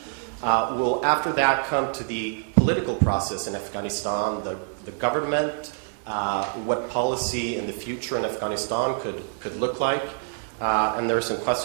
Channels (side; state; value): left; silent; digital silence